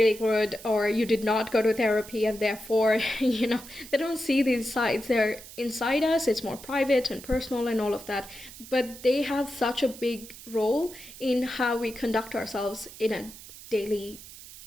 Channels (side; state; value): right; noise; hiss, 16 dB below the sound